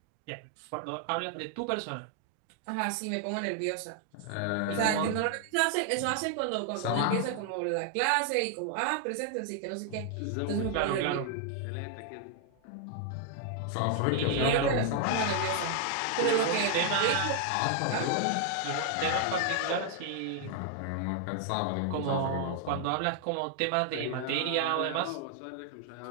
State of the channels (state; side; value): different; both; correlation 0.00